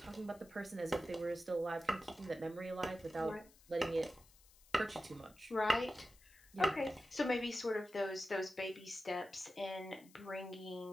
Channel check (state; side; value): noise; left; hiss, 25 dB below the sound